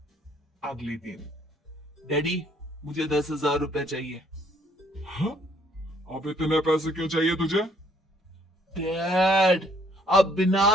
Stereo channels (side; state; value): both; normal; correlation 0.65